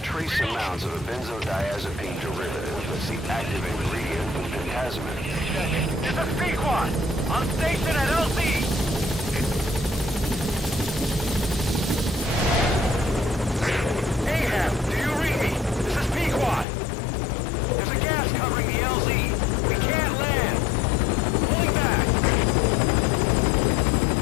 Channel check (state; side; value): drops out; right; at 16.7 s